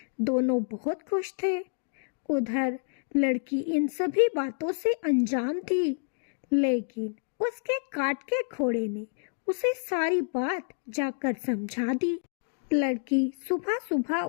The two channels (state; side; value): silent; right; digital silence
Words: दोनों बहुत खुश थे। उधर लड़की इन सभी बातों से अनजान थी, लेकिन उसके काट के घोड़े ने उसे सारी बात जाकर समझा दी। लड़की सुबह सुबह